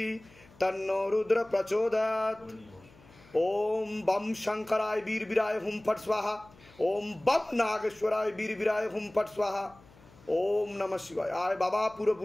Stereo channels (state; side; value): noise; left; hum, 25 dB below the sound